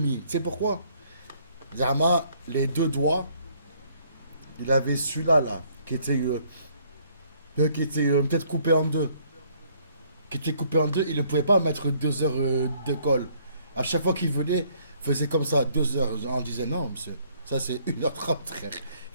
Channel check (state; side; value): inverted; both; correlation -0.64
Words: sais pourquoi? Zama, les deux doigts. Il avait celui-là, là, qui était peut-être coupé en deux. Qui était coupé en deux, il ne pouvait pas mettre 2 heures de colle. À chaque fois qu'il venait, il faisait comme ça, 2 heures. On disait non, monsieur, ça c'est 1h30, frère.